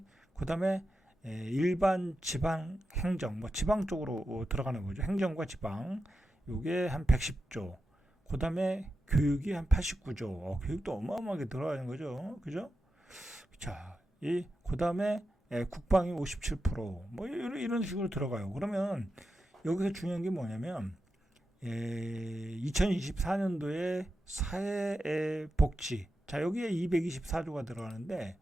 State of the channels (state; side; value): normal; both; correlation 0.89